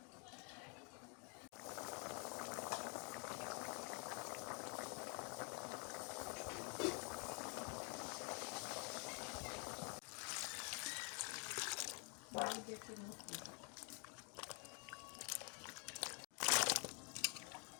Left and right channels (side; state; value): right; quieter; 36.2 dB